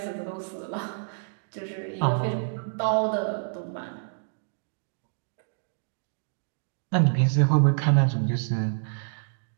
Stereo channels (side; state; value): left; silent; digital silence